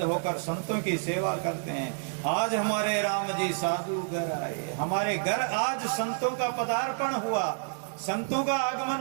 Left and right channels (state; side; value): silent; left; digital silence